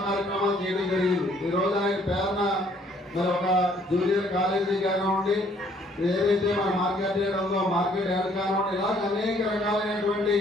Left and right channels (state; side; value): normal; both; correlation 0.62